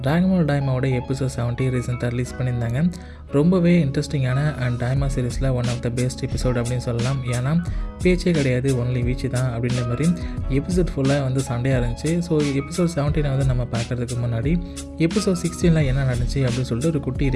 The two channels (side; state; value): both; identical; correlation 1.00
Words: dragon டைமாவோட எபிசோட் 70 ரீசெண்டாக ரிலீஸ் பண்ணியிருந்தாங்க. ரொம்பவே இன்ட்ரெஸ்டிங்கான அண்ட் டைமா சீரிஸில் one of the best episode அப்படின்னு சொல்லலாம். ஏன்னா பேச்சே கிடையாது, ஒன்லி வீச்சு தான் அப்படின்ற மாதிரி எபிசோட் ஃபுல்லாக வந்து சண்டையாக இருந்துச்சு. ஸோ எபிசோட் 17 வந்து நம்ம பார்க்குறதுக்கு முன்னாடி எபிசோட் 16 என்ன நடந்துச்சு அப்படின்னு சொல்லிட்டு ஒரு குட்டி